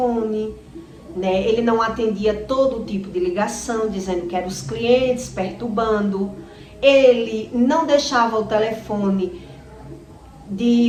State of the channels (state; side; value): identical; both; correlation 1.00